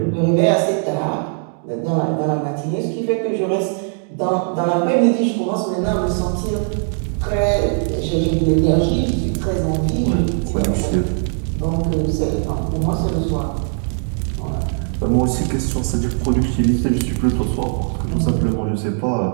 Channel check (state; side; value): silent; left; 56 dB below the other